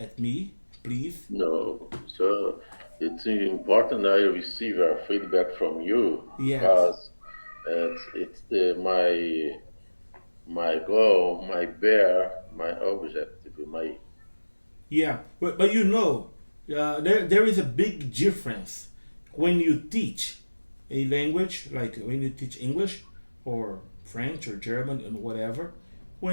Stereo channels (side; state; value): both; inverted; correlation -1.00